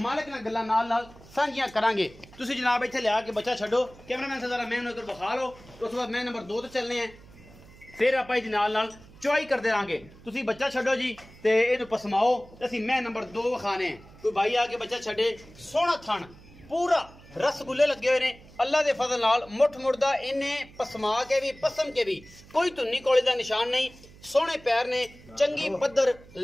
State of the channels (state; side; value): noise; right; hum, 22 dB below the sound